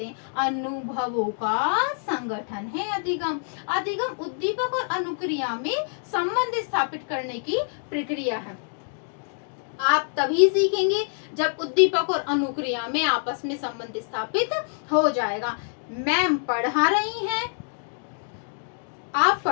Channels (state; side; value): silent; right; digital silence